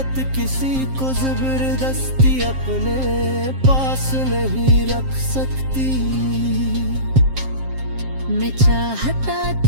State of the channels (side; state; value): left; late; 7.5 ms